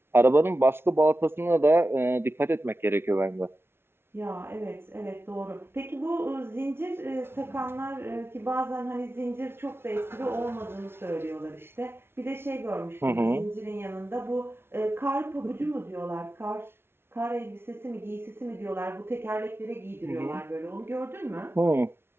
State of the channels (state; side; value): late; left; 0.12 ms